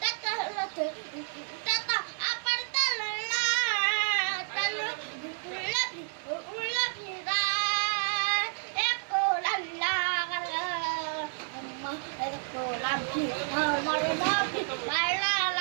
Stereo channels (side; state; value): left; silent; 58 dB below the other